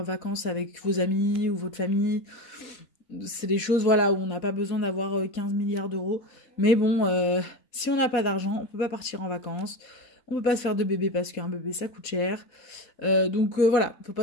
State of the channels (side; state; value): right; late; 4.1 ms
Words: vacances avec vos amis ou votre famille. C'est des choses voilà, où on n'a pas besoin d'avoir 15 milliards d'euros. Mais bon, si on n'a pas d'argent, on peut pas partir en vacances. On peut pas se faire de bébé parce qu'un bébé ça coûte cher. Donc voilà, faut